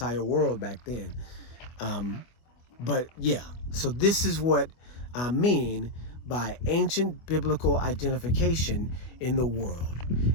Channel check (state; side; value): late; right; 25 ms